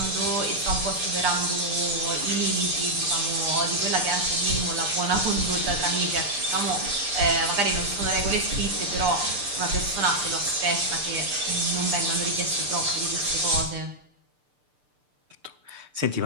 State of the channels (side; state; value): left; late; 6.7 ms